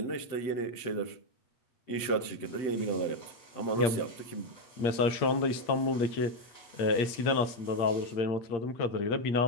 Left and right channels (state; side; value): late; right; 8.7 ms